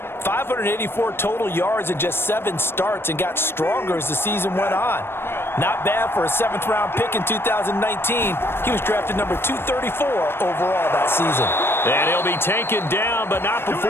584 total yards in just 7 starts and got stronger as the season went on. Not bad for a 7th-round pick in 2019. He was drafted number 234 overall that season. And he'll be taken down, but not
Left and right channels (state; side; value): late; right; 0.11 ms